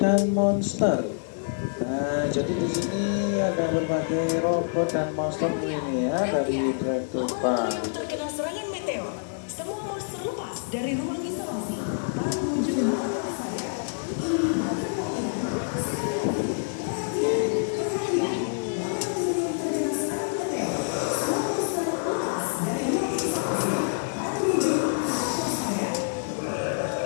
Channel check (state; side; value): silent; right; digital silence